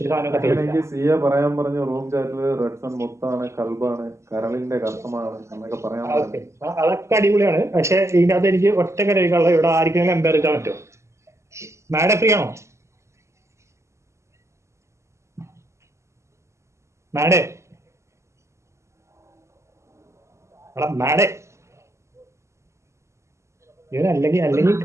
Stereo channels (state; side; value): late; left; 0.14 ms